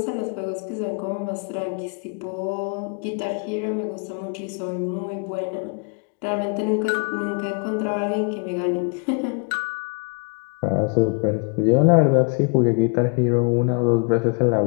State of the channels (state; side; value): quieter; right; 37.3 dB